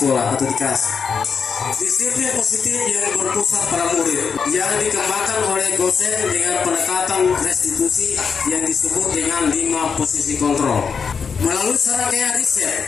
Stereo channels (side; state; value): right; quieter; 6.1 dB